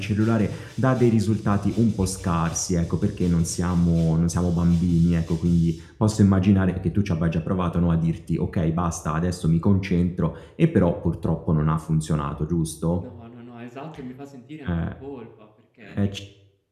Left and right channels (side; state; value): both; identical; correlation 1.00